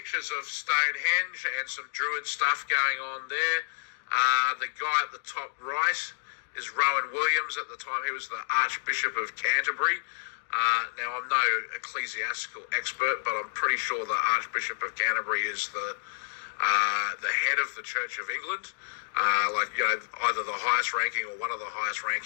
of Stonehenge and some druid stuff going on there. The guy at the top right is Rowan Williams. At the time, he was the Archbishop of Canterbury. Now, I'm no ecclesiastical expert, but I'm pretty sure the Archbishop of Canterbury is the head of the Church of England. Either the highest ranking or one of the highest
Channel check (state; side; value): silent; right; digital silence